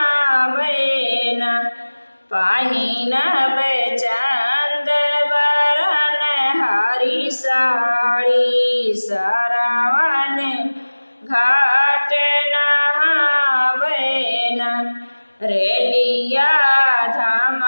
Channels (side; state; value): both; inverted; correlation -1.00